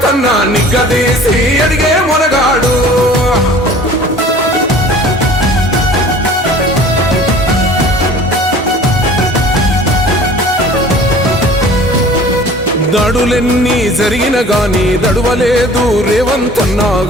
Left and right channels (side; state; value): both; normal; correlation 0.46